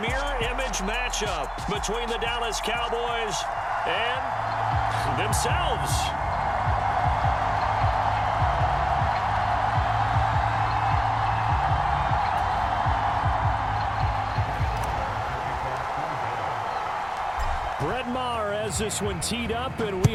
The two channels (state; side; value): identical; both; correlation 1.00